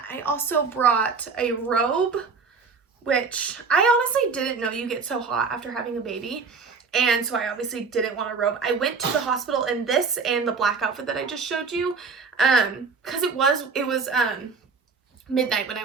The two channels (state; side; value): quieter; left; 4.9 dB